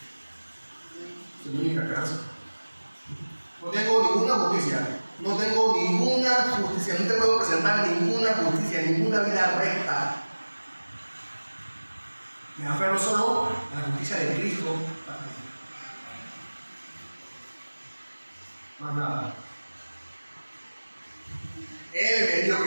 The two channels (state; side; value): inverted; both; correlation -1.00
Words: Es mi única esperanza. No tengo ninguna justicia. No tengo ninguna justicia. No te puedo presentar ninguna justicia, ninguna vida recta. Me aferro solo a la justicia de Cristo. Más nada. Él me dijo